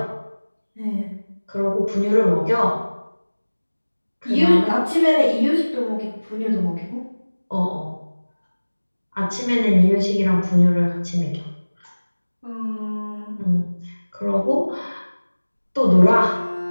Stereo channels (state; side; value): inverted; both; correlation -1.00